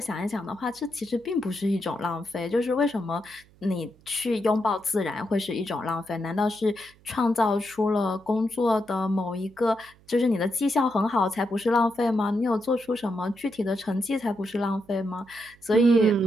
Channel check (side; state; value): right; noise; hum, 28 dB below the sound